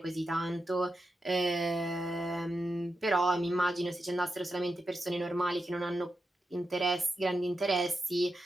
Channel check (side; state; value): both; normal; correlation 0.88